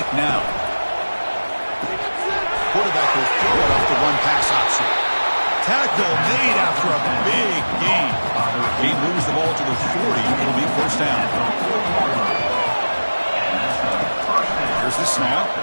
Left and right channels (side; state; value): both; inverted; correlation -1.00